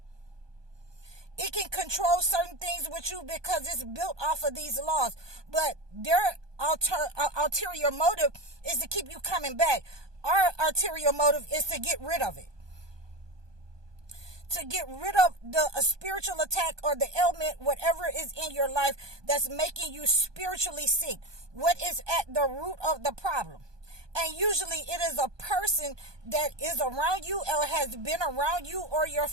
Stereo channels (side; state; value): left; late; 1.2 ms